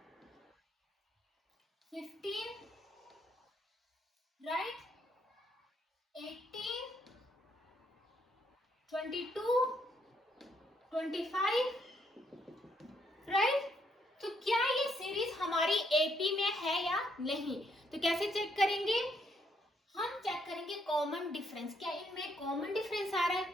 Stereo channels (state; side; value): normal; both; correlation 0.73